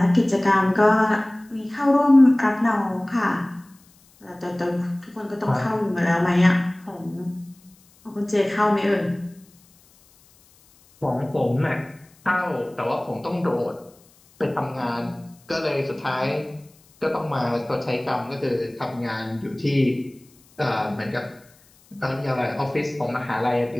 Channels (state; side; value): noise; left; hiss, 30 dB below the sound